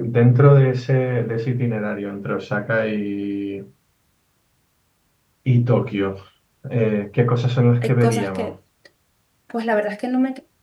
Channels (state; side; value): identical; both; correlation 1.00